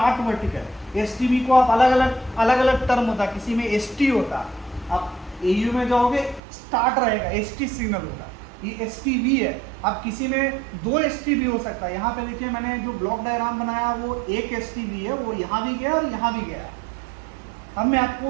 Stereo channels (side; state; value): left; drops out; at 6.4 s